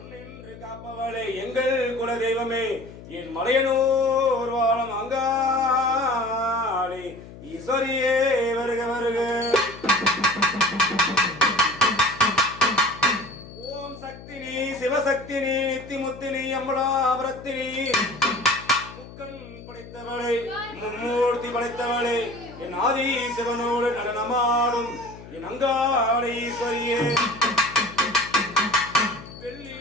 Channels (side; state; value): left; noise; hum, 16 dB below the sound